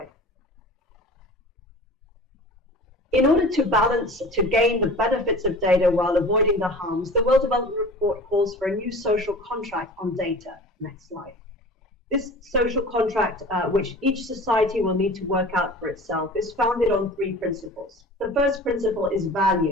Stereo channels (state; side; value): normal; both; correlation 0.40